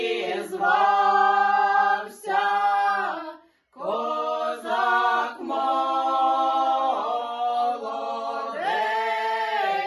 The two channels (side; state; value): both; identical; correlation 1.00